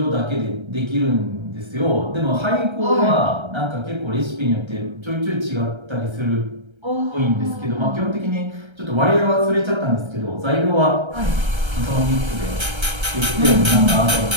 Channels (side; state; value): left; late; 1.3 ms